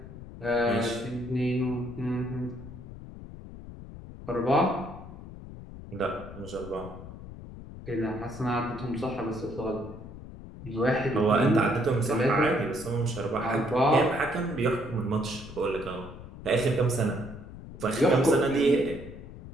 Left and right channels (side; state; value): left; noise; rumble, 14 dB below the sound